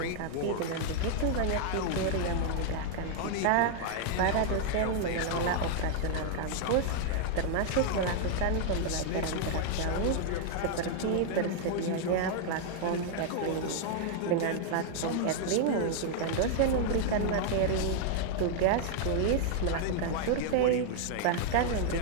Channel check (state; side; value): different; both; correlation 0.00